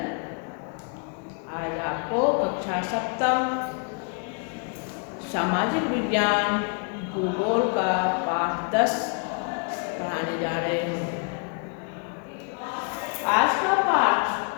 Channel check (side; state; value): right; quieter; 38.5 dB